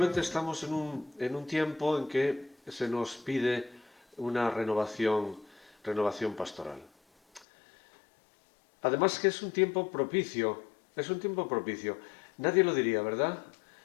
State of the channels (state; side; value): drops out; right; at 7.5 s